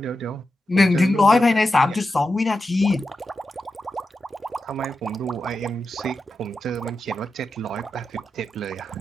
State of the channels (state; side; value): normal; both; correlation 0.90